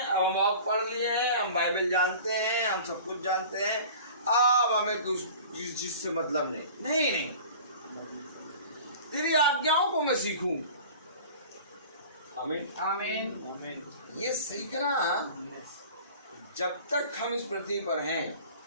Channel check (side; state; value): both; inverted; correlation -0.41